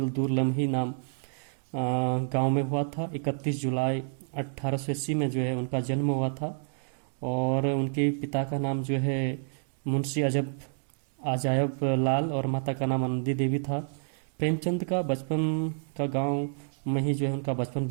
दूर लम्ही नाम गांव में हुआ था। 31 जुलाई 1880 में जो है उनका जन्म हुआ था। और उनके पिता का नाम जो है मुंशी अजायब लाल और माता का नाम आनंदी देवी था। प्रेमचंद का बचपन का गांव में ही जो है उनका बचपन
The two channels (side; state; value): left; silent; 59 dB below the other